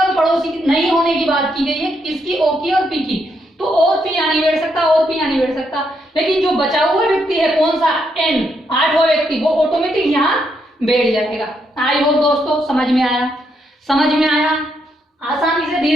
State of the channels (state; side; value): normal; both; correlation 0.78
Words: पड़ोसी नहीं होने की बात की गई है, किसकी, ओ की और पी की। तो और पी यहाँ नहीं बैठ सकता, और पी यहाँ नहीं बैठ सकता, लेकिन जो बचा हुआ व्यक्ति है कौन सा, एन, 8वां व्यक्ति, वो ऑटोमेटिक यहाँ बैठ जाएगा। आई होप दोस्तों समझ में आया, समझ में आया, आसानी से